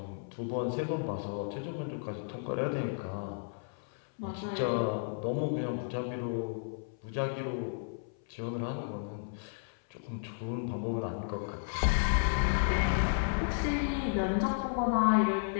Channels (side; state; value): right; silent; 56 dB below the other